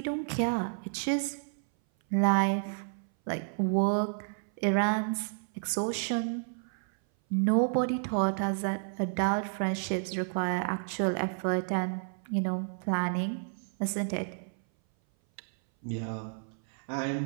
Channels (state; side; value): silent; left; 57 dB below the other